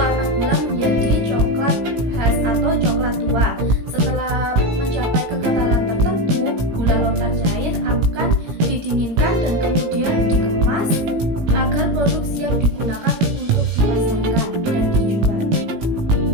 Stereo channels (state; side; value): late; left; 17 ms